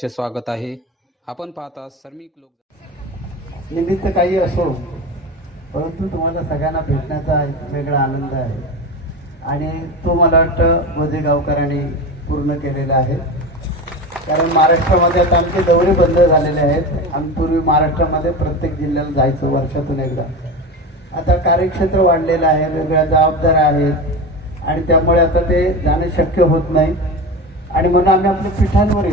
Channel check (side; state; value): both; normal; correlation 0.25